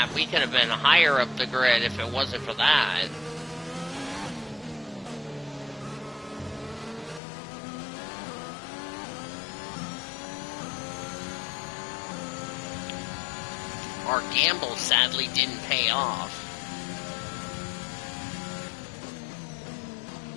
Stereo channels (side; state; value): right; drops out; at 7.2 s